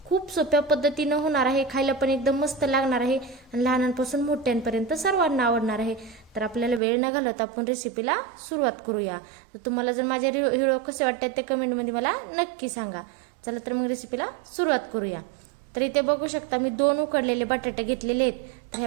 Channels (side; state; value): left; drops out; at 6.8 s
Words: खूप सोप्या पद्धतीनं होणार आहे, खायला पण एकदम मस्त लागणार आहे आणि लहानांपासून मोठ्यांपर्यंत सर्वांना आवडणार आहे. तर आपल्याला वेळ न घालवता आपण रेसिपीला सुरुवात करूया. तर तुम्हाला जर माझे व्हिडिओ कसे वाटतात ते कमेंटमध्ये मला नक्की सांगा. चला तर मग रेसिपीला सुरुवात करूया. तर इथे बघू शकता मी 2 उकडलेले बटाटे घेतलेले आहेत. तर